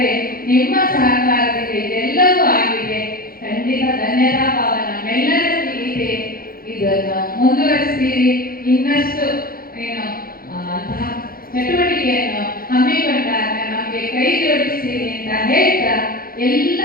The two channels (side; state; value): right; late; 0.42 ms